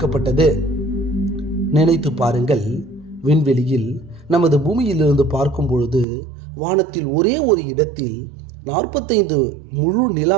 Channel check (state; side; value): drops out; left; at 6.1 s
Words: நினைத்து பாருங்கள், விண்வெளியில் நமது பூமியிலிருந்து பார்க்கும் பொழுது வானத்தில் ஒரே ஒரு இடத்தில் 45 முழு